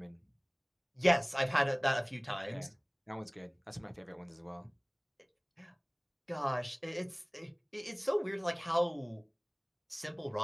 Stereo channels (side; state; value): both; identical; correlation 1.00